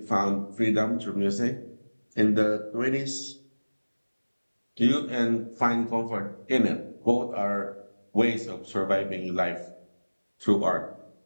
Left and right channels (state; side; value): inverted; both; correlation -1.00